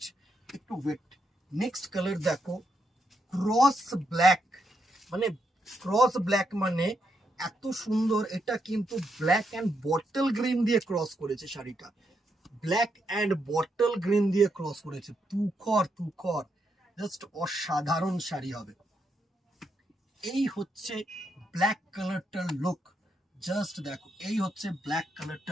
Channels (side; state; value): both; normal; correlation 0.80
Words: একটু ওয়েট। নেক্সট কালার দেখো, ক্রস ব্ল্যাক, মানে ক্রস ব্ল্যাক মানে এত সুন্দর। এটা কিন্তু ব্ল্যাক অ্যান্ড বটল গ্রিন দিয়ে ক্রস করেছে শাড়িটা, ব্ল্যাক অ্যান্ড বটল গ্রিন দিয়ে ক্রস করেছে। তুখর তুখর, জাস্ট অসাধারণ শাড়ি হবে। এই হচ্ছে ব্ল্যাক কালারটার লুক। জাস্ট দেখো, এই হচ্ছে ব্ল্যাক